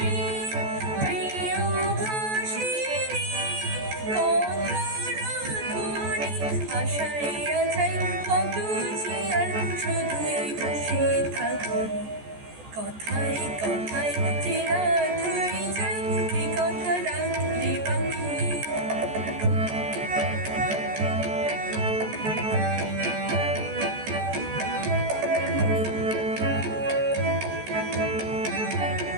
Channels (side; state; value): left; late; 14 ms